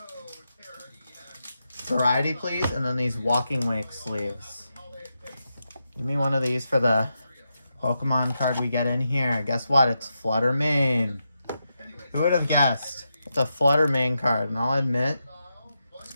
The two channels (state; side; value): inverted; both; correlation -0.87